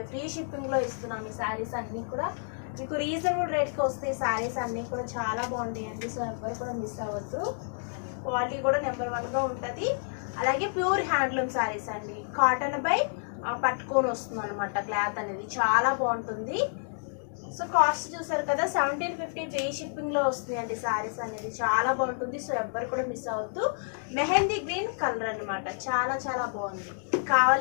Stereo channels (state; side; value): silent; right; digital silence